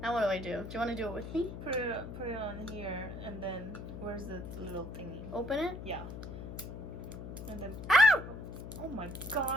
Now what do I do? Do you want to do it with me? put it on here, and then where's the little thingy? Open it. Yeah. And then Ow! oh my god.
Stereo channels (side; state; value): left; noise; hum, 9 dB below the sound